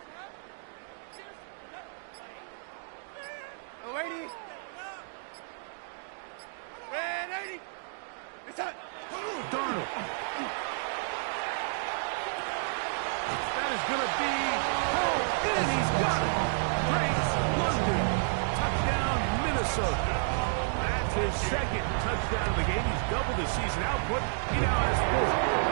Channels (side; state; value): left; silent; digital silence